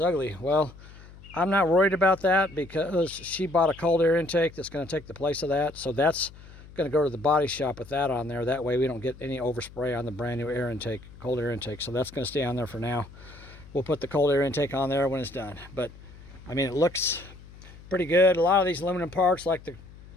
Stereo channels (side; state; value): left; noise; hum, 19 dB below the sound